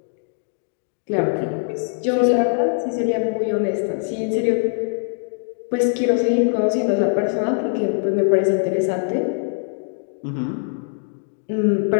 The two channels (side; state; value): right; silent; digital silence